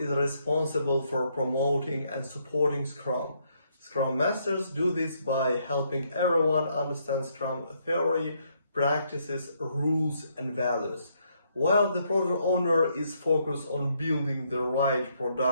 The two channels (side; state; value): both; inverted; correlation -0.73